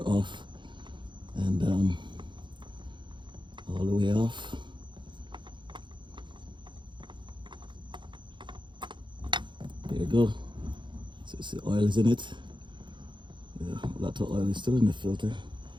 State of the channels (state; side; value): late; left; 0.23 ms